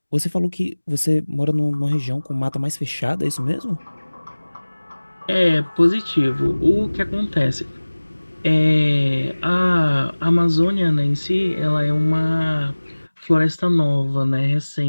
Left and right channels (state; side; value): inverted; both; correlation -1.00